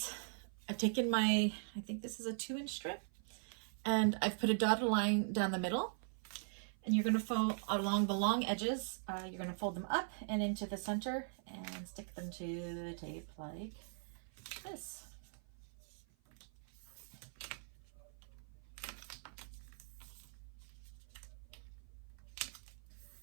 I've taken my, I think this is a 2-inch strip, and I've put a dotted line down the middle. And you're going to fold along the long edges. You're going to fold them up and into the center and stick them to the tape like this.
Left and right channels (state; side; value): silent; left; 50 dB below the other